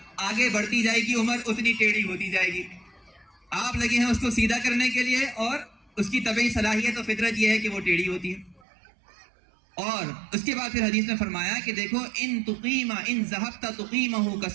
آگے بڑھتی جائے گی عمر اتنی ٹیڑھی ہوتی جائے گی. آپ لگے ہیں اس کو سیدھا کرنے کے لیے, اور اس کی طبعی صلاحیت و فطرت یہ ہے کہ وہ ٹیڑھی ہوتی ہے. اور اس کے بعد پھر حدیث میں فرمایا کہ دیکھو ان ذهبت تقیمہ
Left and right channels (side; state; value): left; drops out; at 8.7 s